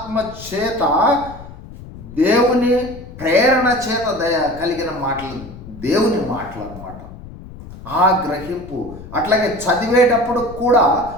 చేత దేవుని ప్రేరణ చేత కలిగిన మాటలు, దేవుని మాటలు అన్నమాట. ఆ గ్రహింపు అట్లాగే చదివేటప్పుడు కూడా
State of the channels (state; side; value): noise; left; rumble, 15 dB below the sound